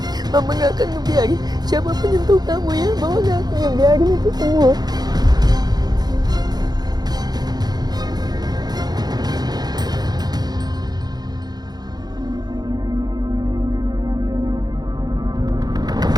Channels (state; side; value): late; left; 0.19 ms